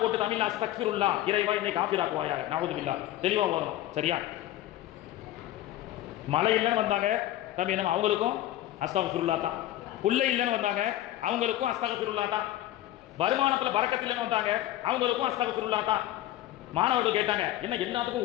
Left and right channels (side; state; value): right; quieter; 14.1 dB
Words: தமிழ்ல அஸ்தக்ஃபிருல்லாஹ், இறைவா என்னை காஃபிராக்குவாயாக, நஊது பில்லாஹ், தெளிவா ஓதணும். சரியா? மழை இல்லைன்னு வந்தாங்க தம்பி, நம்ம அவங்களுக்கும் அஸ்தக்ஃபிருல்லாஹ் தான். புள்ளை இல்லைன்னு வந்தாங்க, அவங்களுக்கும் அஸ்தக்ஃபிருல்லாஹ் தான். வருமானத்தில் பரக்கத்தில்லைன்னு வந்தாங்க, அவங்களுக்கும் அஸ்தக்ஃபிருல்லாஹ் தான். மாணவர்கள் கேட்டாங்க, என்ன எல்லாத்துக்கும்